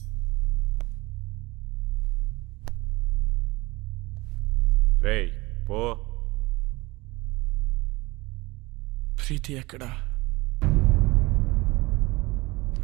రేయ్ పో. ప్రీతి ఎక్కడా?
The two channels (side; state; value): left; quieter; 22.2 dB